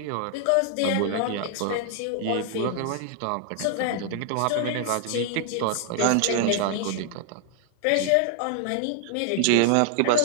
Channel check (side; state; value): both; different; correlation 0.00